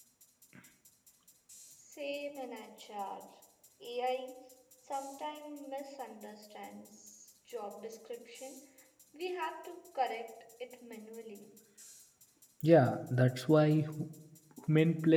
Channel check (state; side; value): identical; both; correlation 1.00